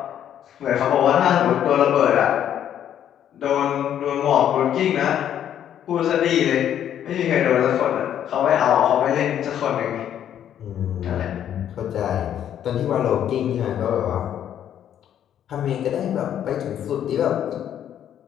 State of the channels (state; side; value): quieter; right; 10.1 dB